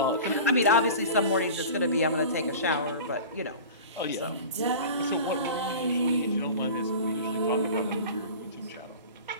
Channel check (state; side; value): inverted; both; correlation -0.36